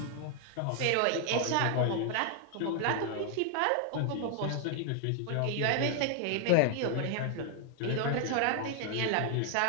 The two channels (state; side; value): different; both; correlation 0.00